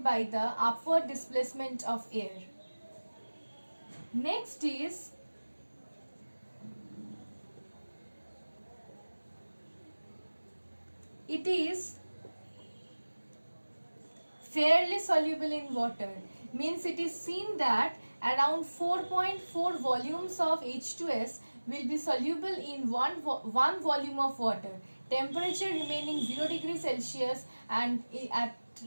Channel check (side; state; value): both; inverted; correlation -1.00